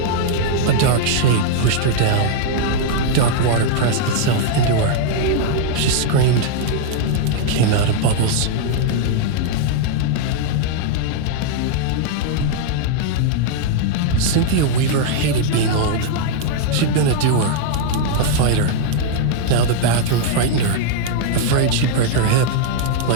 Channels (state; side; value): different; both; correlation 0.00